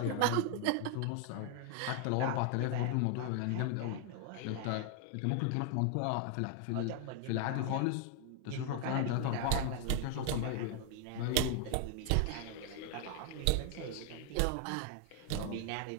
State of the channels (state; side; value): different; both; correlation 0.00